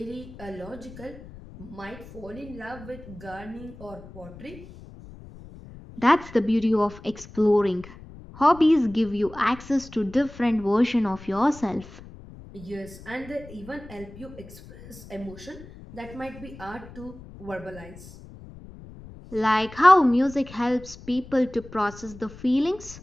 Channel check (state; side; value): noise; left; rumble, 17 dB below the sound